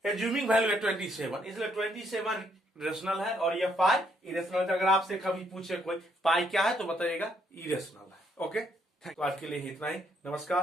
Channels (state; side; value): normal; both; correlation 0.71